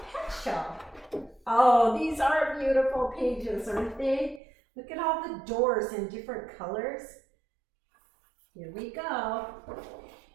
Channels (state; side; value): drops out; left; at 4.4 s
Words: show. Oh, these are beautiful pages, aren't they? Look at all the doors in different colors. Here we go.